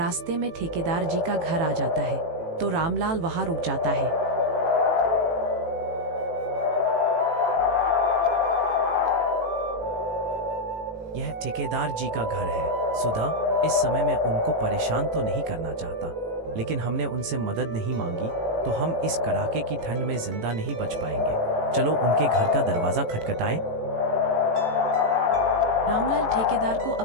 में ठेकेदार जी का घर आ जाता है, तो रामलाल वहां रुक जाता है। यह ठेकेदार जी का घर है। सुधा, इस समय मैं उनको परेशान तो नहीं करना चाहता, लेकिन हमने उनसे मदद नहीं मांगी तो हम इस कड़ाके की ठंड में जिंदा नहीं बच पाएंगे। चलो उनके घर का दरवाजा खटखटाएं। रामलाल ठेकेदार को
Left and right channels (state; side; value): late; left; 18 ms